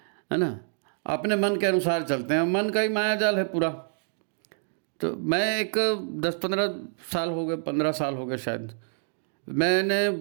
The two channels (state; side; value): silent; left; 60 dB below the other